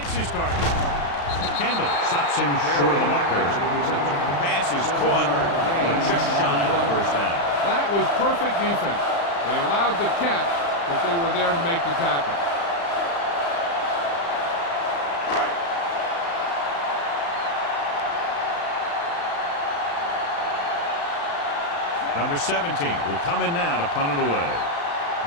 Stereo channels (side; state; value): right; late; 35 ms